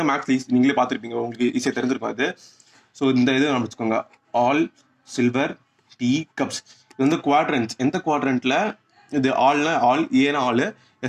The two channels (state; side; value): identical; both; correlation 1.00